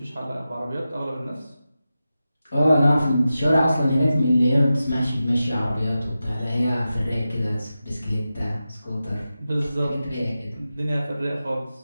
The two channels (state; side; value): inverted; both; correlation -0.93